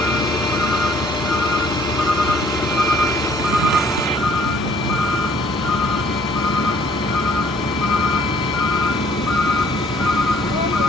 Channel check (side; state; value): both; normal; correlation 0.59